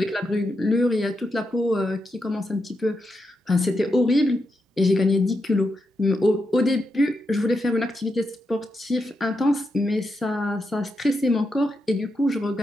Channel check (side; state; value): both; normal; correlation 0.85